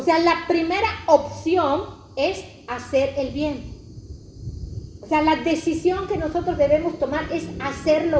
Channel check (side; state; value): both; identical; correlation 1.00